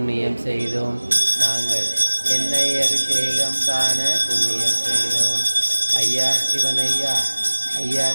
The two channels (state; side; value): inverted; both; correlation -1.00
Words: செய்தோம். நாங்கள் எண்ணெய் அபிஷேகம் காண புண்ணியம் செய்தோம். ஐயா சிவனையா, ஐயா